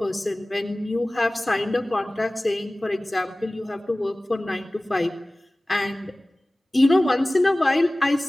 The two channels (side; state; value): both; normal; correlation 0.98